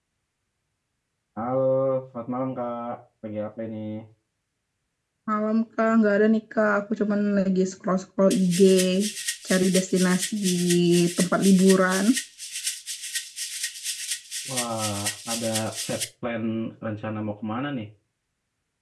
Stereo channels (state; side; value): identical; both; correlation 1.00